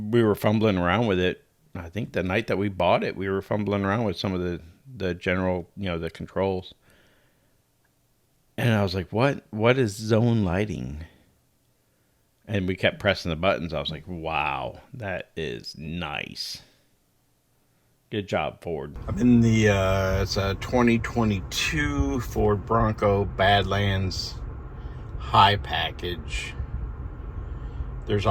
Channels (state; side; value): identical; both; correlation 1.00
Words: we were fumbling around with it. I think the night that we bought it, we were fumbling around with some of the general, the controls. And I was like, what is zone lighting? And we kept pressing the buttons. I was like, wow, that is nice. Good job, Ford. I'm in the, it's a 2022 Ford Bronco Badlands High package. There's